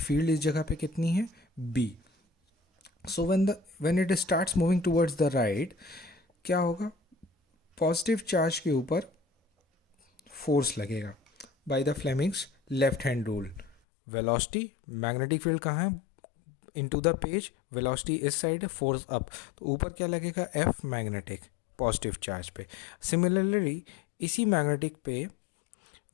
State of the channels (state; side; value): drops out; right; at 13.8 s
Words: इस जगह पे कितनी है, b. So when it starts moving towards the right, क्या होगा, पॉजिटिव चार्ज के ऊपर फोर्स लगेगा by the Fleming's left hand rule. Velocity, magnetic field कहाँ है, इनटू द पेज, वेलोसिटी इस साइड है, फोर्स अप, तो ऊपर क्या लगेगा, F मैग्नेटिक, पॉजिटिव चार्ज पे. सिमिलरली इसी मैग्नेटिक पे